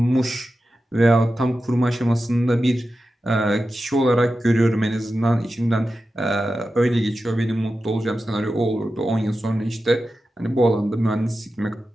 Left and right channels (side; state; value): both; normal; correlation 0.92